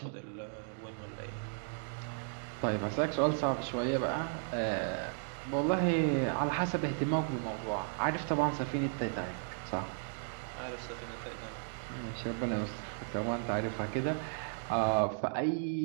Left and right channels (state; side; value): silent; left; digital silence